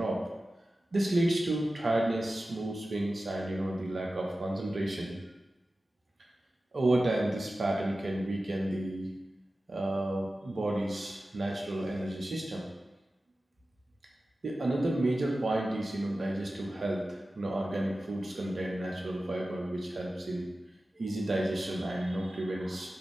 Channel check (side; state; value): both; normal; correlation 0.95